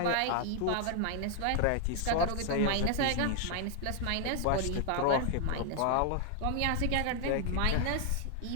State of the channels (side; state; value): both; different; correlation 0.00